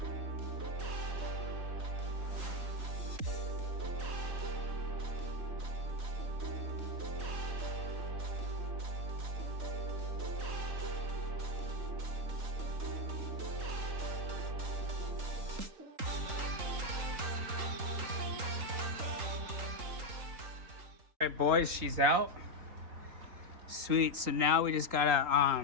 All right, boys, she's out. Sweet. So now we just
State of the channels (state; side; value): late; left; 3.9 ms